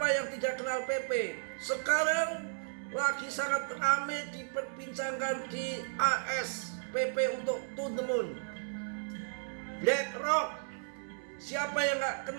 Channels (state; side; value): silent; left; 55 dB below the other